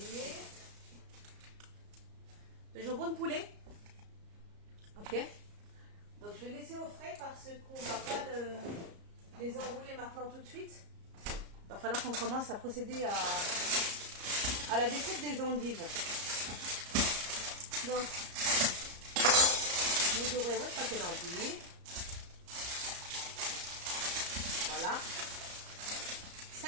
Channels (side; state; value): left; late; 34 ms